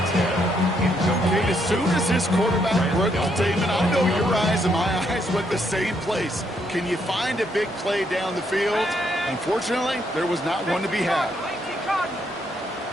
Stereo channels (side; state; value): both; normal; correlation 0.74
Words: Okay, as soon as this quarterback broke the statement, I know your eyes and my eyes went the same place. Can you find a big play down the field? Unfortunately, there was not one to be had.